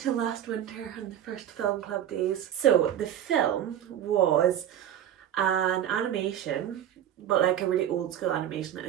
to last winter and the first film club days. So the film was an animation, but like a really old school animation, like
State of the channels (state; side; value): quieter; left; 10.5 dB